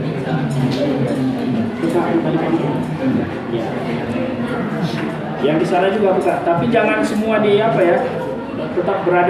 Yang di sana juga buka, tapi jangan semua di apa ya, tetap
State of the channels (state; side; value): identical; both; correlation 1.00